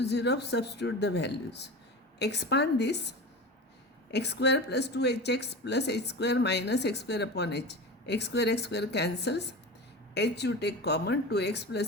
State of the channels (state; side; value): normal; both; correlation 0.29